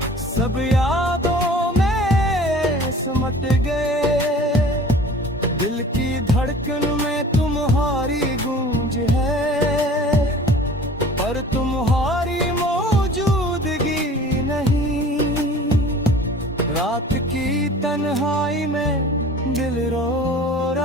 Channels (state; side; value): normal; both; correlation 0.45